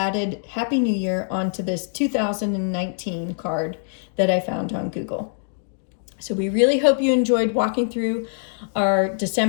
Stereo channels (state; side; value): silent; right; digital silence